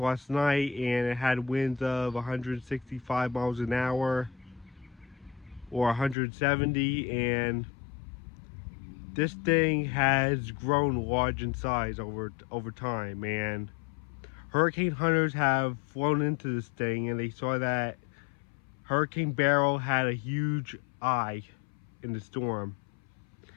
night, and it had winds of 165 miles an hour or 170, and this thing has grown large in size over time, and hurricane hunters have flown into this thing, and they saw that Hurricane Beryl had a huge eye in the storm,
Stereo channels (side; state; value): right; drops out; at 6.2 s